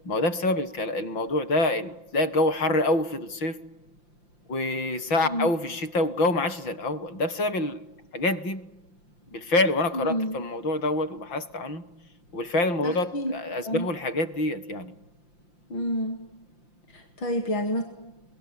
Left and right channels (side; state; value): right; late; 5.8 ms